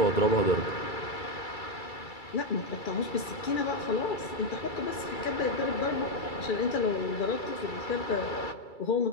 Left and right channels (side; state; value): right; late; 2.3 ms